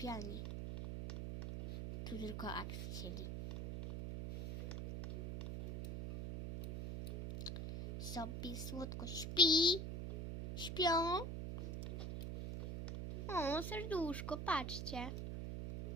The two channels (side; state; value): right; noise; hum, 4 dB below the sound